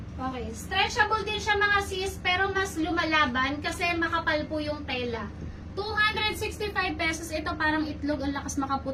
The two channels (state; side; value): identical; both; correlation 1.00